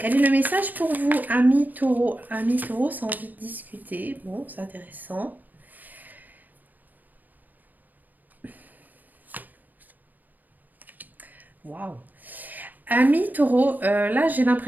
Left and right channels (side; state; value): left; late; 0.084 ms